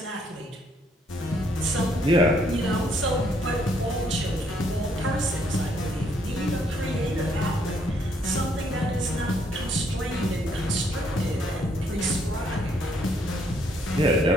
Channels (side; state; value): both; normal; correlation 0.69